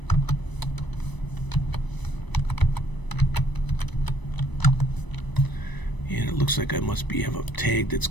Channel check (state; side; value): late; right; 1.0 ms